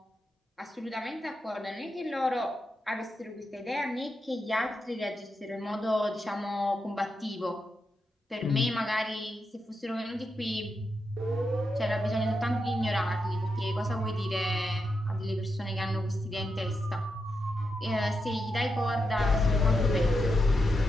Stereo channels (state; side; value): normal; both; correlation 0.85